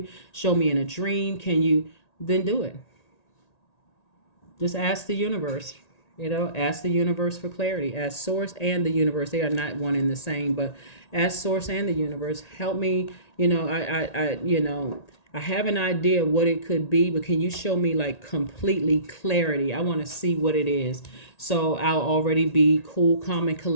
show me in a dream? Can you then do it? Just ask the universe. Ask the universe for clarity. Ask source and the universe. They are not one and the same, but ask source and the universe. Help me. I have an idea of what it could be, but can you show me like completely clarity? I want to see what it is. So I'll already be cool, calm, and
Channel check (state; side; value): late; right; 1.9 ms